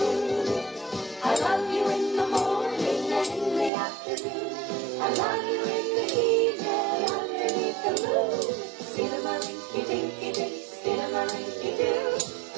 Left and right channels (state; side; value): drops out; left; at 3.7 s